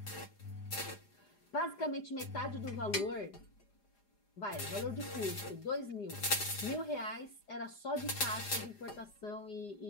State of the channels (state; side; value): late; right; 4.9 ms